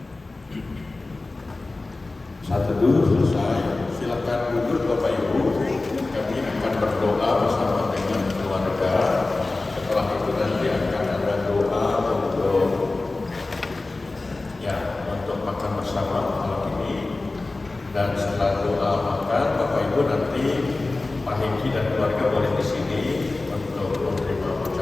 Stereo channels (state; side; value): quieter; right; 3.2 dB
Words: Saat teduh selesai, silakan duduk Bapak Ibu. Kami akan berdoa bersama dengan keluarga. Setelah itu nanti akan ada doa untuk makan bersama malam ini. Dan setelah doa makan, Bapak Ibu nanti Pak Hengki dan keluarga boleh di sini untuk menerima